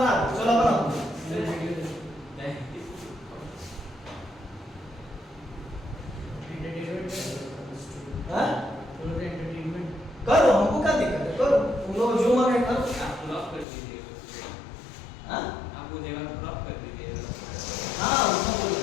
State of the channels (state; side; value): drops out; right; at 13.7 s